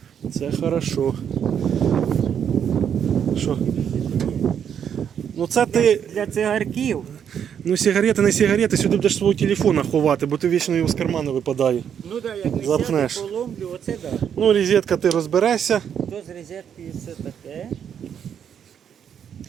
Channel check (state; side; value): quieter; left; 8.4 dB